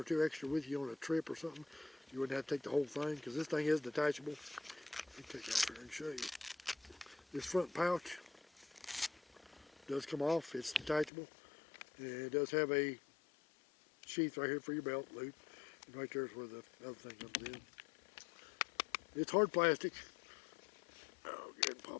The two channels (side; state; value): right; drops out; at 11.1 s